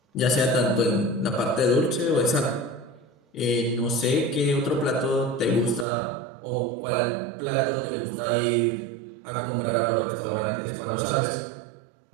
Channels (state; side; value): drops out; left; at 5.9 s